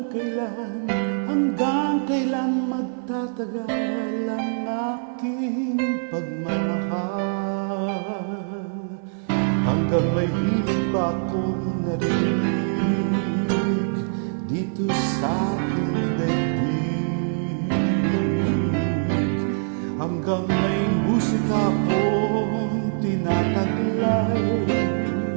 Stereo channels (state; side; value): silent; left; digital silence